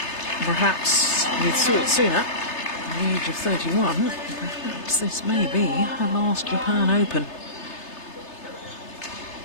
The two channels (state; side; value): late; right; 3.3 ms